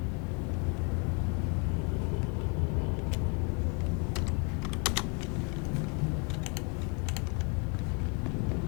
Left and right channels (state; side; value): quieter; right; 35.1 dB